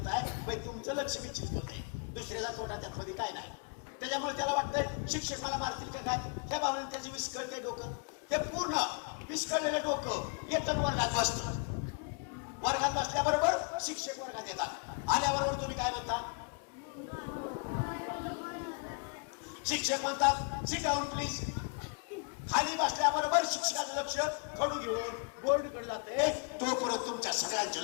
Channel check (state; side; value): quieter; right; 36.2 dB